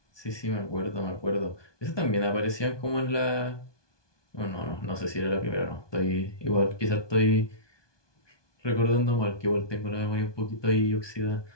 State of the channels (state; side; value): late; right; 1.2 ms